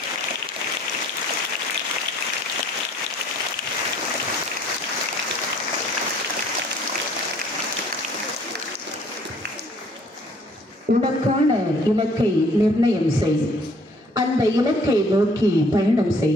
உனக்கான இலக்கை நிர்ணயம் செய், அந்த இலக்கை நோக்கி பயணம்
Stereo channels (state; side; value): normal; both; correlation 0.59